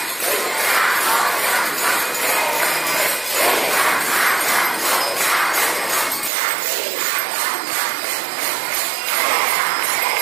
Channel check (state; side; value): drops out; left; at 6.3 s